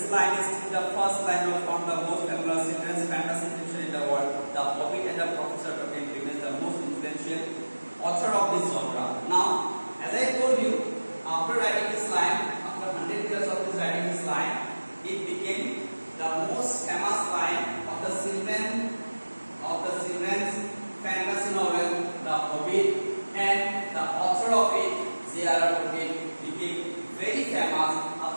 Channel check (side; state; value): both; inverted; correlation -1.00